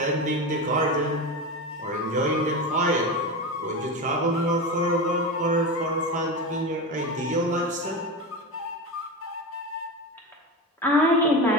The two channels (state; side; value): normal; both; correlation 0.22